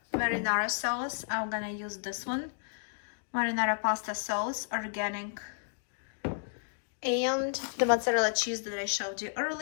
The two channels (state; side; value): silent; right; digital silence